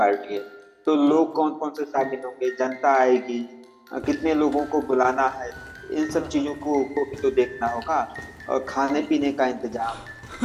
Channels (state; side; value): identical; both; correlation 1.00